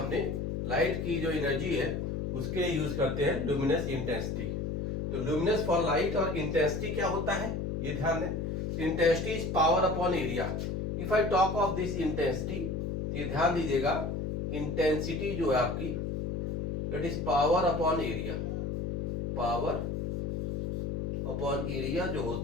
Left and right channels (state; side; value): noise; left; hum, 2 dB below the sound